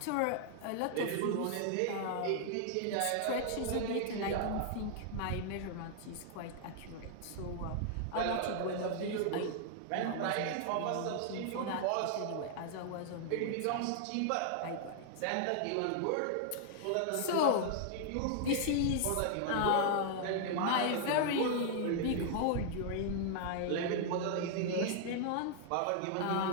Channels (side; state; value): both; different; correlation 0.00